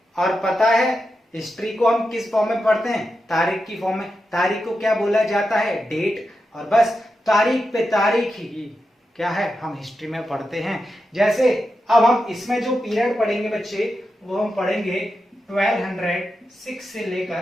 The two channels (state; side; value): normal; both; correlation 0.89